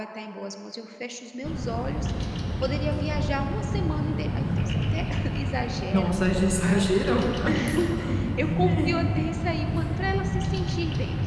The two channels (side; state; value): both; identical; correlation 1.00